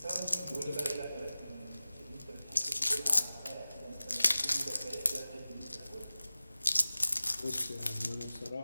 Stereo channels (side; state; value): both; inverted; correlation -0.97